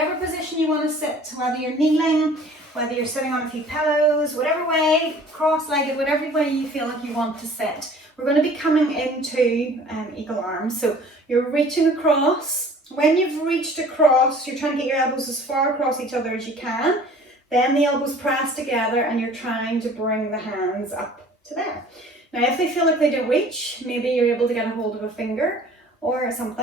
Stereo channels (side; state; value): both; normal; correlation 0.49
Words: position you want to sit, whether you're kneeling, whether you're sitting on a few pillows, whatever way, cross-legged, whatever way you feel like you want to sit. We're going to be coming into eagle arms. So you're reaching across. When you've reached across, you're trying to get your elbows as far across each other as you can. Then the elbows press together and you're trying to bring the hands up to there. Now, if they feel like they don't reach, maybe you're able to get a hold of a finger or